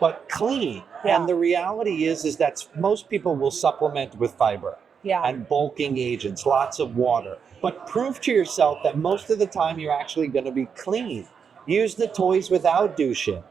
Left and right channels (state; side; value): quieter; left; 6.6 dB